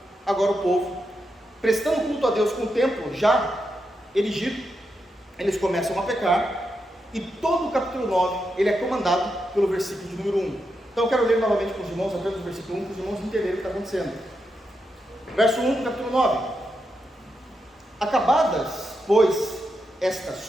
agora o povo, prestando culto a Deus com o templo já erigido, eles começam a pecar, e todo o capítulo 9, ele é comandado pelo versículo de número 1. Então eu quero ler novamente com os irmãos, apenas o versículo 1, para os irmãos entenderem o que está acontecendo. Verso 1 do capítulo 9. Acabadas, pois, estas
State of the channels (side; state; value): both; normal; correlation 0.85